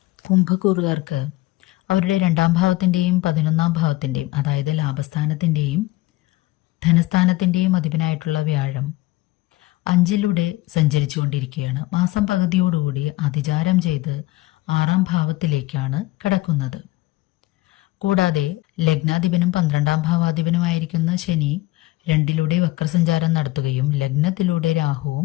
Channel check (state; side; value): quieter; right; 18.5 dB